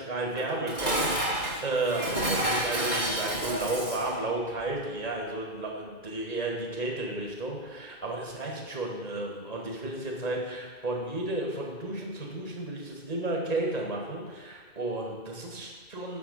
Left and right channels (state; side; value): late; right; 2.0 ms